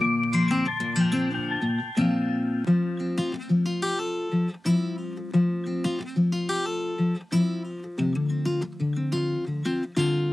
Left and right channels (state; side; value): normal; both; correlation 0.96